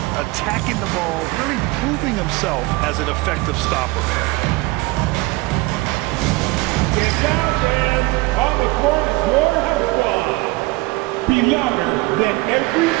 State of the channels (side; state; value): left; quieter; 22.5 dB